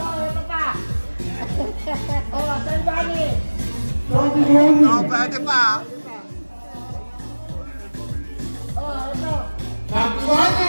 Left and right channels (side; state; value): both; inverted; correlation -1.00